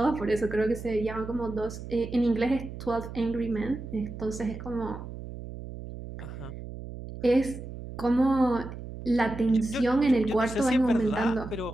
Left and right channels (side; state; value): right; noise; hum, 11 dB below the sound